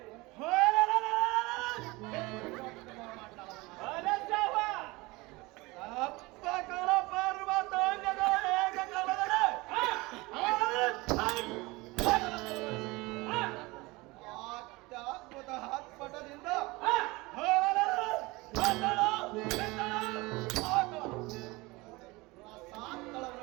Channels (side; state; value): left; quieter; 22.9 dB